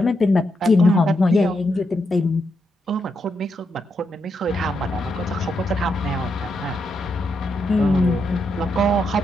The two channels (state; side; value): normal; both; correlation 0.82